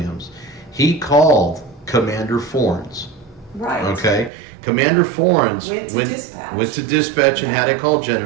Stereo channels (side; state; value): left; drops out; at 4.3 s